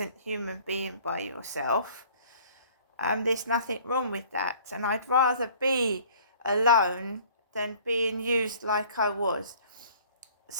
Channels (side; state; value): both; inverted; correlation -0.53